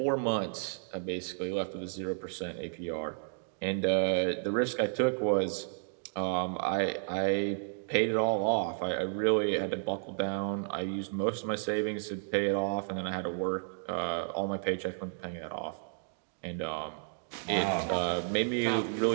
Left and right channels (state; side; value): silent; left; digital silence